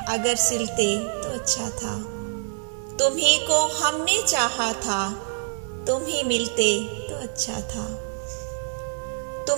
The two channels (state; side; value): silent; left; 61 dB below the other